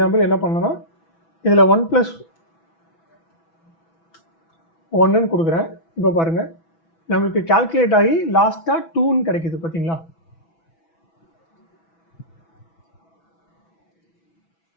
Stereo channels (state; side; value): late; right; 6.1 ms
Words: என்ன பண்ணணும்னா, இதில் 1+1 கொடுக்குறேன். இப்போ பாருங்கள், நம்மளுக்கு கால்குலேட் ஆகி லாஸ்ட்டாக 2ன்னு கிடைக்குது. பார்த்தீங்களா?